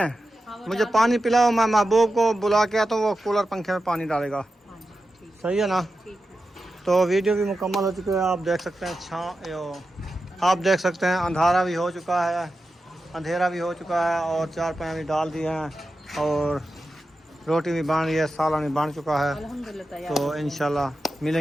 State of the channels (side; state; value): both; normal; correlation 0.91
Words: मुझे पानी पिलाओ। मैं महबूब को बुला के आता हूँ, वो कूलर पंखे में पानी डालेगा। सही है ना। तो वीडियो भी मुकम्मल हो चुकी है, आप देख सकते हैं। आप देख सकते हैं अंधारा भी हो चुका है, अंधेरा भी हो चुका है, और 4 पाए भी डाल दिए हैं, और रोटी भी बन रही है, सालन भी बन चुका है। अल्हम्दुलिल्लाह तैयार। तो इंशाल्लाह